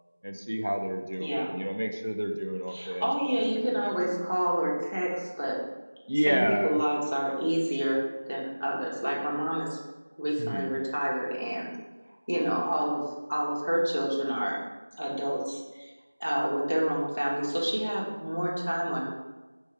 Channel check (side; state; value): both; inverted; correlation -1.00